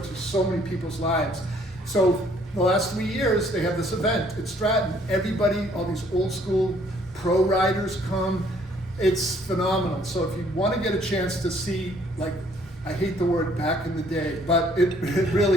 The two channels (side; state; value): both; normal; correlation 0.62